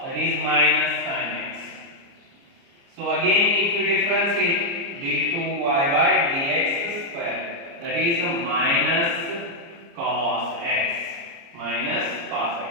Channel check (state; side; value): late; left; 29 ms